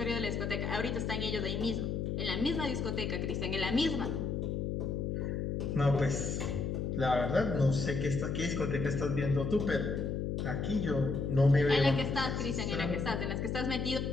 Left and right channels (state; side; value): noise; left; hum, 1 dB below the sound